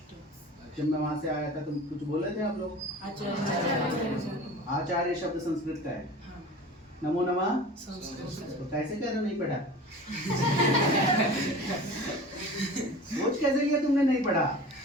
जब मैं वहां से आया था, तुम कुछ बोले थे आप लोग? आचार्य शब्द संस्कृत का है। नमो नमः तो कैसे कह रहे हो नहीं पढ़ा? सोच कैसे लिया तुमने नहीं पढ़ा?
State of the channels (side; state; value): both; normal; correlation 0.38